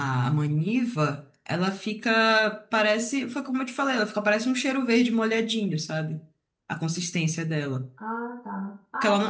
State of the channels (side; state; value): both; identical; correlation 1.00